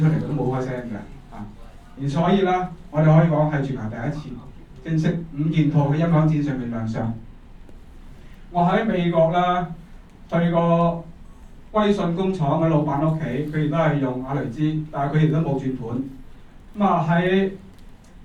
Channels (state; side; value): identical; both; correlation 1.00